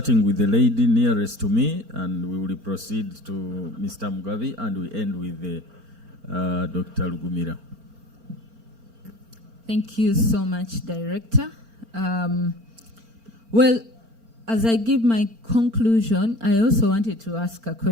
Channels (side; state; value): left; late; 4.4 ms